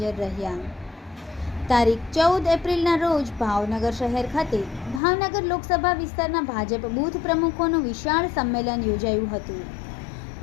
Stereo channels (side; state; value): right; drops out; at 5.0 s